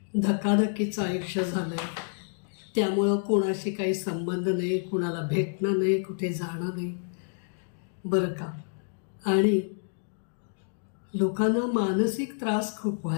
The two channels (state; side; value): silent; right; digital silence